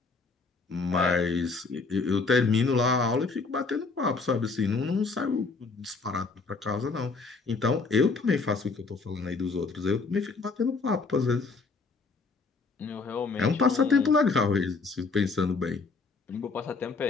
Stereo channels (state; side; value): quieter; right; 4.2 dB